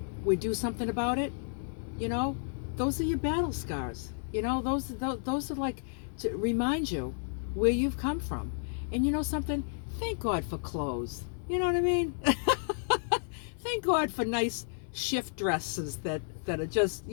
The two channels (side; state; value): right; silent; 57 dB below the other